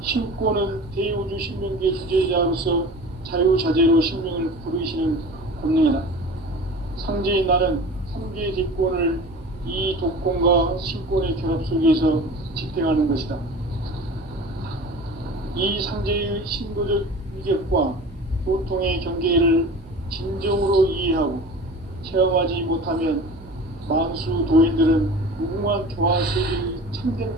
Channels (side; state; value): right; noise; hum, 21 dB below the sound